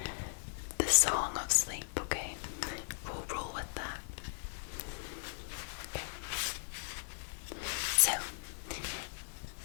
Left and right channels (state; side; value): silent; right; digital silence